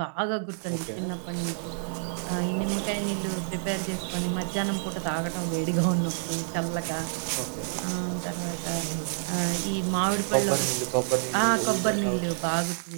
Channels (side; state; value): left; silent; 59 dB below the other